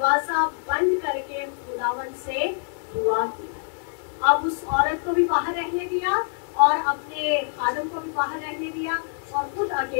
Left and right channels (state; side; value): silent; right; 62 dB below the other